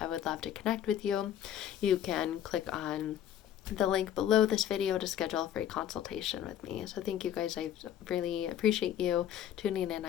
I would love to connect with you. You can click on the link below this video to schedule a free consultation with me. So thank you guys. I really appreciate you tuning in.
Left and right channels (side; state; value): right; quieter; 10.5 dB